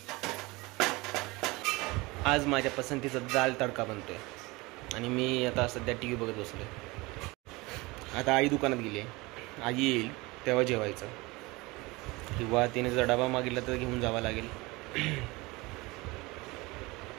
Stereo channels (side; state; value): left; quieter; 23.2 dB